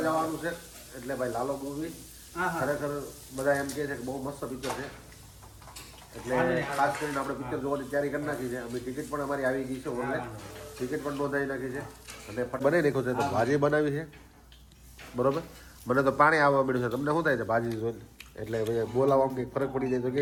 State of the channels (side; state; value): both; identical; correlation 1.00